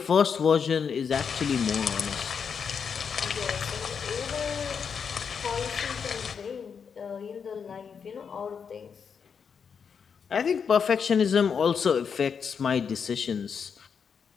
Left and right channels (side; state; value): right; quieter; 6.6 dB